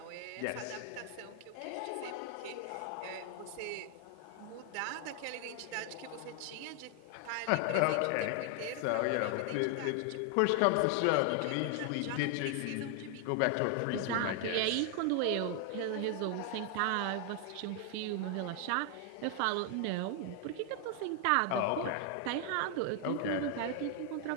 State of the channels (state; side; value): different; both; correlation 0.00